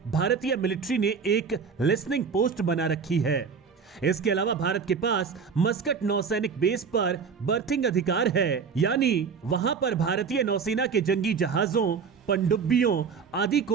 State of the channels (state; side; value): quieter; left; 5.9 dB